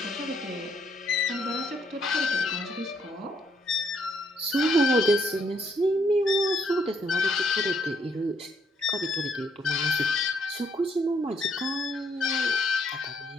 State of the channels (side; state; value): both; normal; correlation 0.71